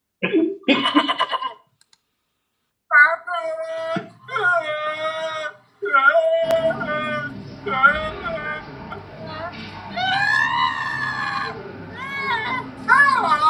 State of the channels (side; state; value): both; identical; correlation 1.00